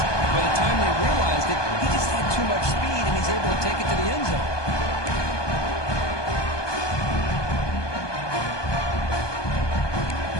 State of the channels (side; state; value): right; late; 1.2 ms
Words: By the time they realized it, he just had too much speed, and he's able to take it to the end zone.